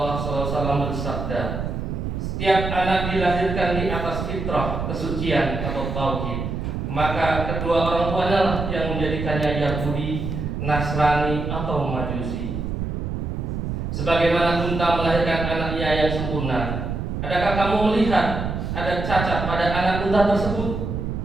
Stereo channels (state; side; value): noise; right; rumble, 3 dB below the sound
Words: SAW bersabda, setiap anak dilahirkan di atas fitrah, kesucian atau tauhid, maka kedua orang tuanya lah yang menjadikannya Yahudi, Nasrani atau Majusi. Sebagaimana unta melahirkan anaknya yang sempurna, adakah kamu melihat ada cacat pada anak unta tersebut?